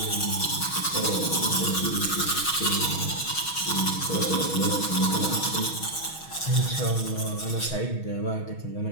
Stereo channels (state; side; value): late; right; 6.3 ms